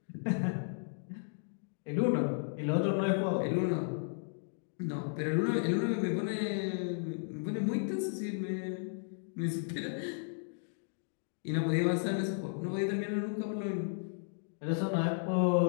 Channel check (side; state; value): right; silent; digital silence